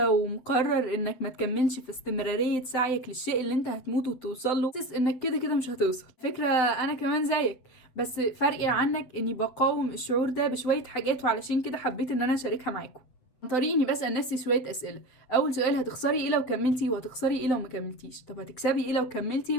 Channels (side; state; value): right; late; 8.2 ms